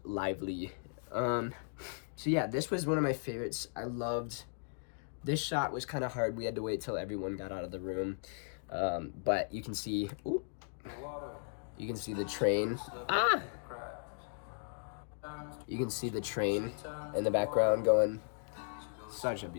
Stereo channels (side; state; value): right; silent; digital silence